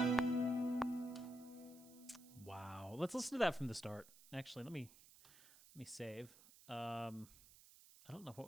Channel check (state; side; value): noise; right; hiss, 21 dB below the sound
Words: Let's listen to that from the start. Actually, let me save. I don't know what